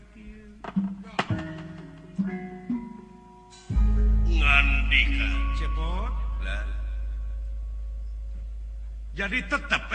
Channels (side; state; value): both; identical; correlation 1.00